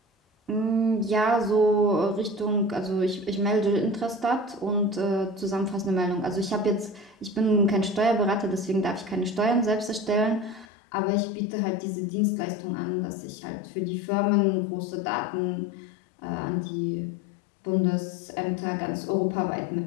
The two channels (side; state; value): right; drops out; at 10.7 s